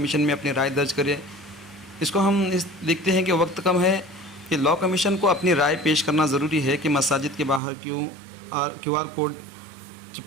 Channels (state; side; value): drops out; left; at 7.6 s